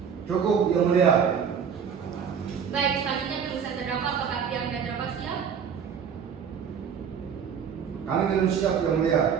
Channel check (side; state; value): left; quieter; 7.3 dB